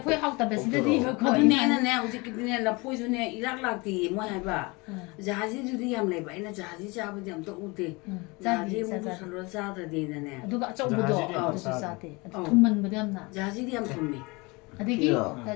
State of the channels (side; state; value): right; quieter; 26.1 dB